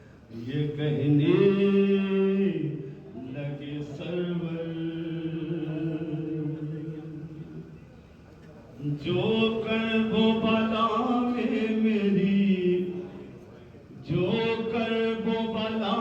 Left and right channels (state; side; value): identical; both; correlation 1.00